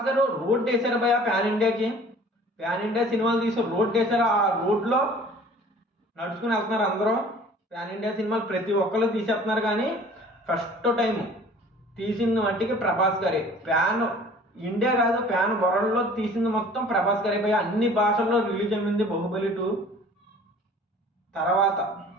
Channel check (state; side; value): normal; both; correlation 0.49